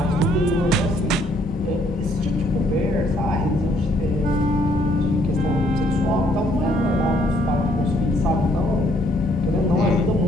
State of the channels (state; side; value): normal; both; correlation 0.66